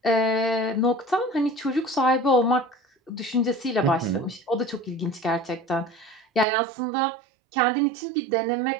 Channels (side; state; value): left; drops out; at 6.5 s